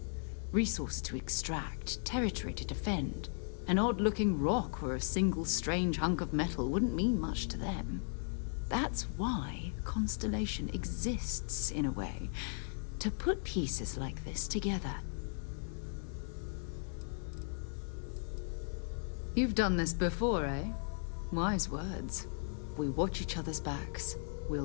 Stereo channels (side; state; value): right; silent; digital silence